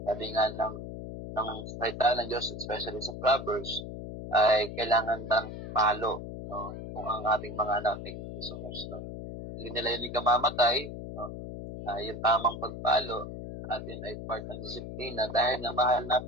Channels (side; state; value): left; noise; hum, 9 dB below the sound